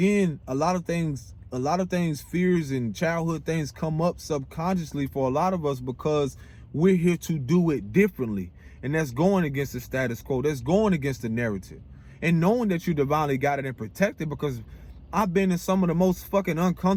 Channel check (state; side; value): identical; both; correlation 1.00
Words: a lot of things, fears and childhood things come up subconsciously for a lot of us because we're here to do it differently. And that's going against the status quo. That's going against the narrative. And knowing that you're divinely guided and protected, because I've been in some of the most fucking